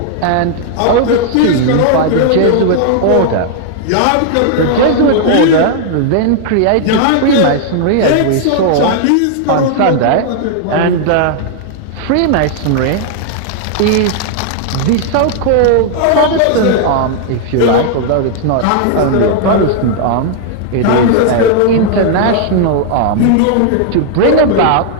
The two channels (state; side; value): different; both; correlation -0.01